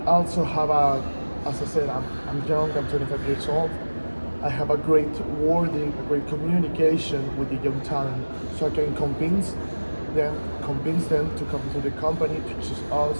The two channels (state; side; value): inverted; both; correlation -1.00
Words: also have as I said, I'm young, I'm 25 years old. I have a great wording, a great communication with the young talent, so I can convince them to come to the company, to choose